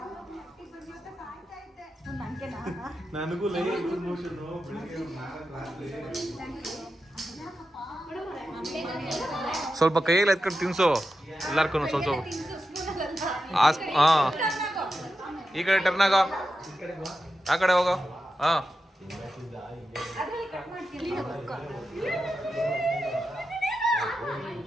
ನನಗೂ ಸ್ವಲ್ಪ ಕೈಯಲ್ಲಿ ಎತ್ಕೊಂಡು ತಿನ್ಸು ಎಲ್ಲಾರ್ಕು ಸ್ವಲ್ಪ. ಹಾ, ಈ ಕಡೆ ಟರ್ನ್ ಆಗೋ, ಆ ಕಡೆ ಹೋಗೋ. ಹಾ,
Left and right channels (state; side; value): normal; both; correlation 0.90